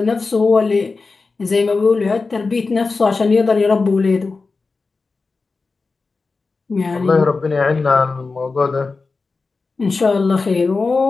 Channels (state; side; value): quieter; right; 4.1 dB